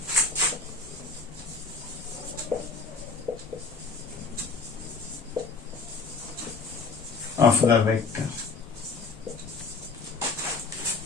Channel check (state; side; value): quieter; right; 4.4 dB